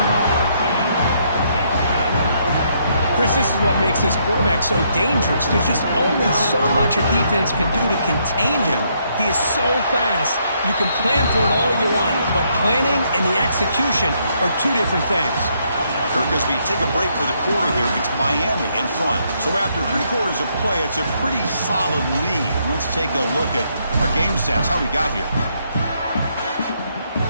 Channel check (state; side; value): inverted; both; correlation -0.73